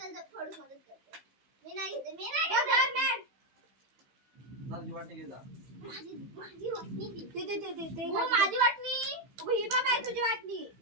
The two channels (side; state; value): left; late; 15 ms